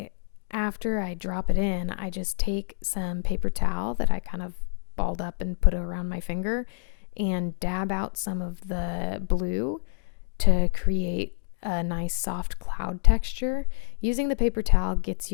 I drop it in, I just take some paper towel that I kind of balled up and put around my finger and dab out some of the blue to create a nice soft cloud texture. Using the paper towel gets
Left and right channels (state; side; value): silent; right; digital silence